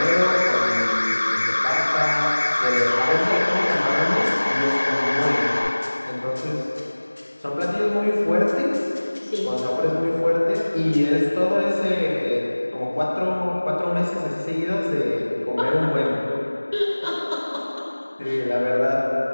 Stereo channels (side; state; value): both; inverted; correlation -1.00